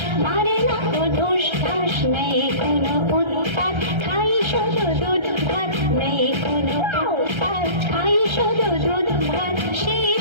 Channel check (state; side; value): late; left; 1.3 ms